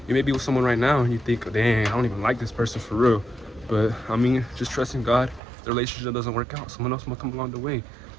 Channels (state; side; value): drops out; left; at 5.4 s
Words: You may be with someone right now and you think, dang, I don't even like this person for real. But I mean, just trust in God. If the relationship doesn't work out, someone else will come along the way.